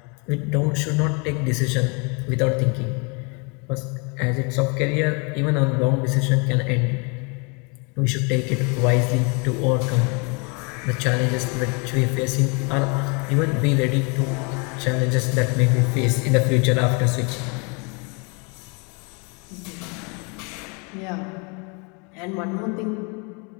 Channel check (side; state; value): right; quieter; 33.1 dB